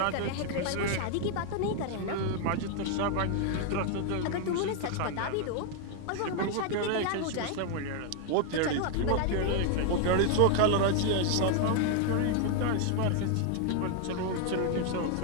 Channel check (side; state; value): both; different; correlation 0.00